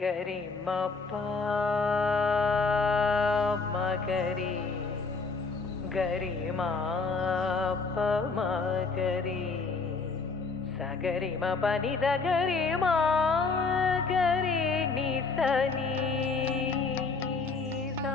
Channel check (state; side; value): quieter; right; 4.4 dB